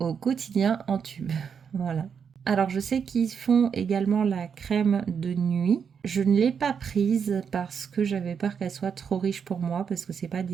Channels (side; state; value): left; quieter; 6.8 dB